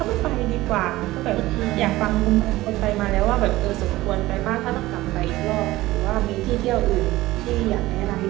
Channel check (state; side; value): quieter; left; 17.6 dB